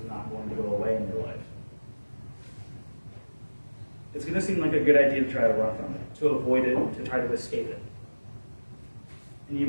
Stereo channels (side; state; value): both; inverted; correlation -1.00